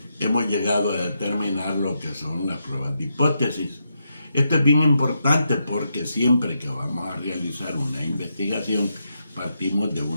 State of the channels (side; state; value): both; inverted; correlation -0.83